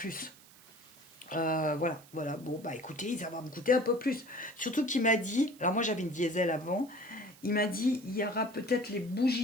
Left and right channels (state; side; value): noise; right; hiss, 24 dB below the sound